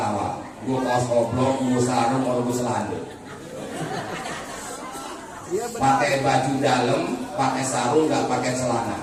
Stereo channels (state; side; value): identical; both; correlation 1.00